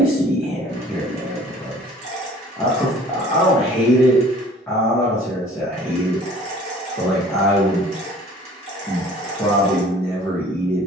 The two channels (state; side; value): normal; both; correlation 0.50